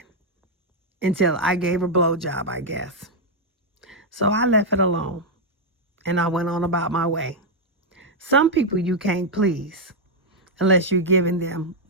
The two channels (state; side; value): normal; both; correlation -0.01